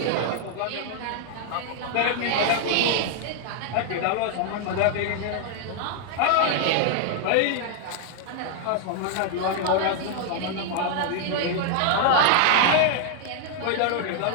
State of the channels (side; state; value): both; different; correlation 0.00